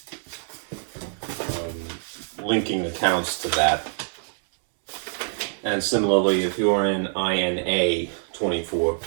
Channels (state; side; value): silent; left; 62 dB below the other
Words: linking accounts to that. And similarly, if you're in INA 24,